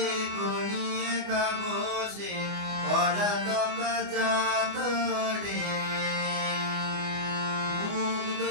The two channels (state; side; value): late; left; 24 ms